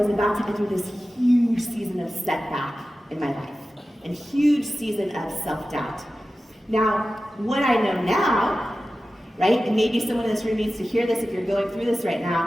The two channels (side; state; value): both; normal; correlation 0.94